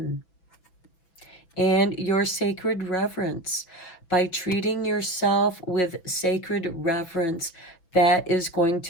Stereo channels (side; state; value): right; late; 6.0 ms